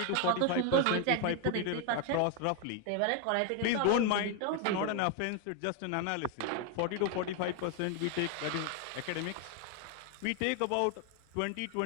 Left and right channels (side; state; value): both; different; correlation 0.01